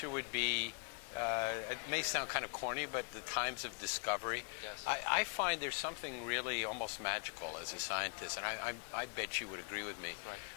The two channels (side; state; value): right; quieter; 38.3 dB